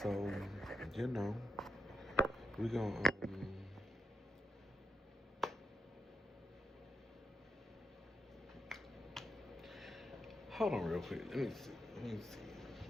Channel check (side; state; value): both; normal; correlation 0.82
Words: So, you know, we gonna hold on real quick. Let me see. Let me see.